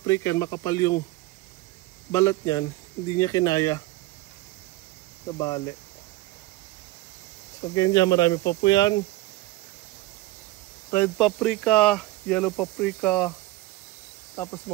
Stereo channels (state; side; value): quieter; left; 18.2 dB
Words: yan, makapal yung balat niyan. Hindi niya kinaya. Nabali. So ganyan, marami pa po yan. Red paprika, yellow paprika, tapos